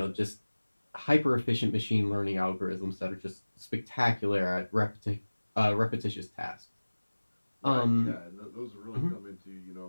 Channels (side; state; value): both; inverted; correlation -1.00